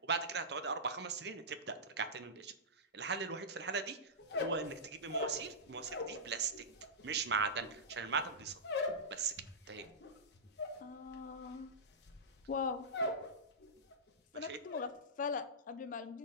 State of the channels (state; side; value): normal; both; correlation -0.16